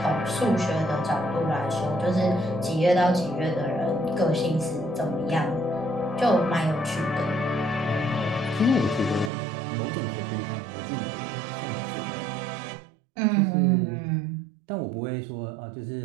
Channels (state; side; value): drops out; left; at 9.3 s